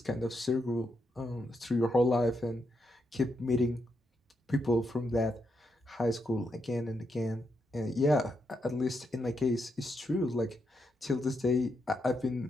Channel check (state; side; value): normal; both; correlation 0.81